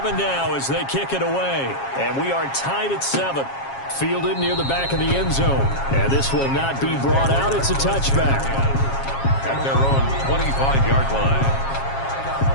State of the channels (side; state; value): right; late; 7.4 ms